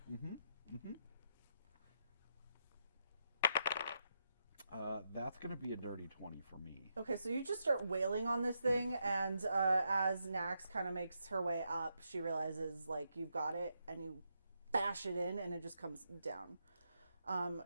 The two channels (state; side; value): inverted; both; correlation -0.82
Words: That's gonna be a dirty 20 for me. Okay, so you just start wailing on this thing, and as Nax kind of makes her way up, she realizes, like, you've got it, and you bash it in, and it just comes down.